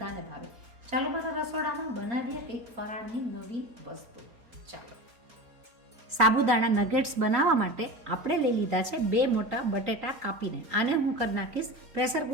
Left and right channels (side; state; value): left; late; 3.9 ms